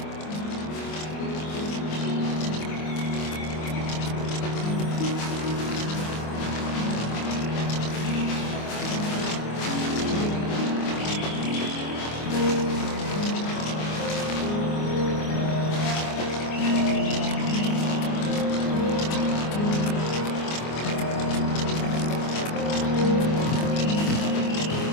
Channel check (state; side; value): late; right; 25 ms